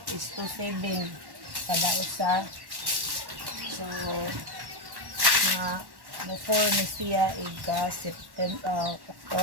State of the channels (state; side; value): late; left; 1.1 ms